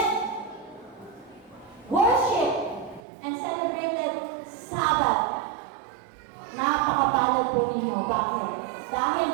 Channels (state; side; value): drops out; left; at 3.0 s